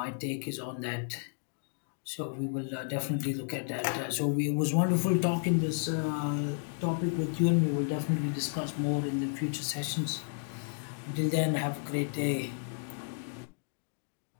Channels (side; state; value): right; silent; digital silence